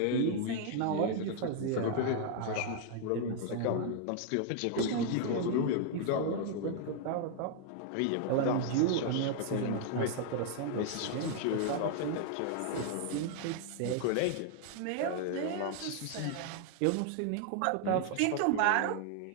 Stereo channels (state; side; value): different; both; correlation 0.00